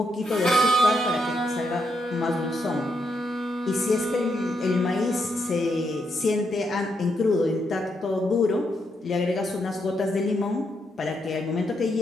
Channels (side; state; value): both; normal; correlation 0.80